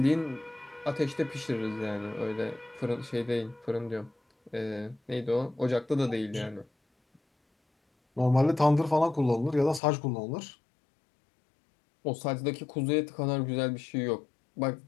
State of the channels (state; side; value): drops out; right; at 9.8 s